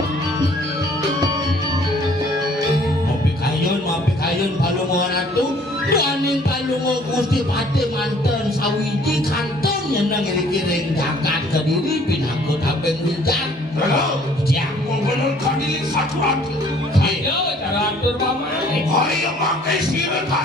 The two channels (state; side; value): normal; both; correlation 0.57